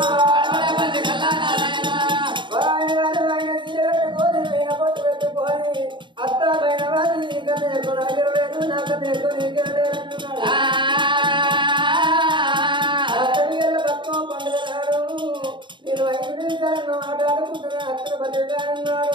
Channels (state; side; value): late; left; 0.23 ms